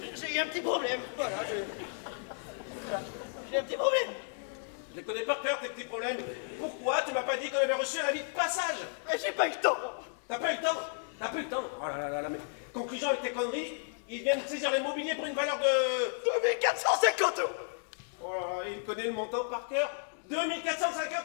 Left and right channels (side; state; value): right; silent; digital silence